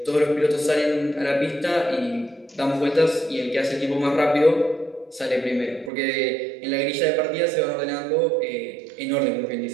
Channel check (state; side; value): drops out; left; at 5.9 s